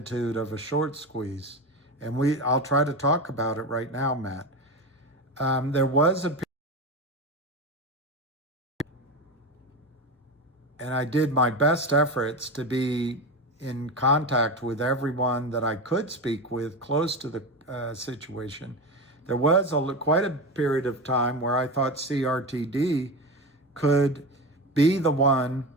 of a short squeeze. And I'll try to talk about it right now, Matt. There was a, and I did my best efforts to be in contact with everyone that I could speak with close to the situation. There was quite a period of time where I thought CRTD could be the one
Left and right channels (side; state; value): both; normal; correlation 0.21